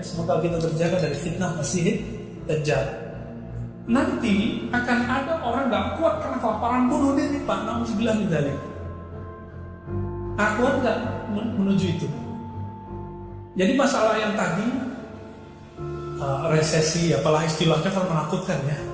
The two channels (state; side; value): identical; both; correlation 1.00